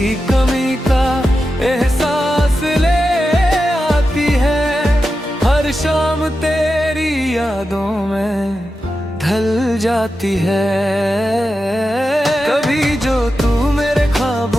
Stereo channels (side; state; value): both; normal; correlation 0.91